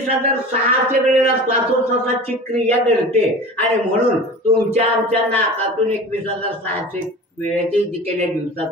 वेळेला श्वासोच्छ्वासाची क्रिया घडते. आणि म्हणून तुमच्या आमच्या नाकातून 21,600 वेळेची जी केल्या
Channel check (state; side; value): normal; both; correlation 0.36